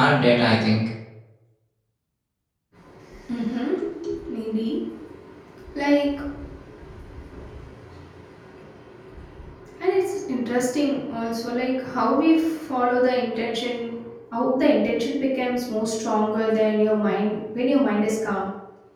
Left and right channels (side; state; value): both; identical; correlation 1.00